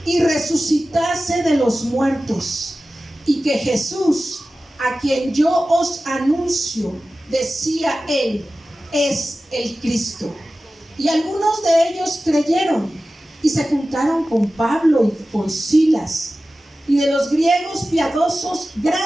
y resucitase de los muertos, y que Jesús, a quien yo os anuncio, decía él, es el Cristo. Y algunos de ellos creyeron y se juntaron con Pablo y con Silas, y de los griegos piadosos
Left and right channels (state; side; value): normal; both; correlation 0.95